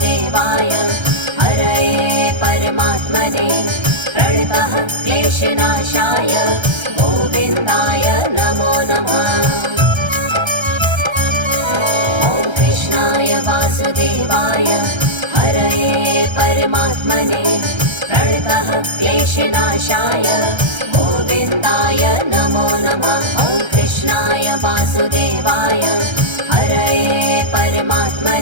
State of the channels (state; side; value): late; left; 1.3 ms